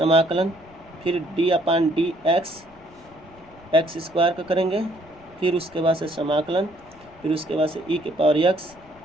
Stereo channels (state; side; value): noise; left; rumble, 26 dB below the sound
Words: फिर d/dx x² का करेंगे, फिर उसके बाद से समाकलन, फिर उसके बाद से e⁻x,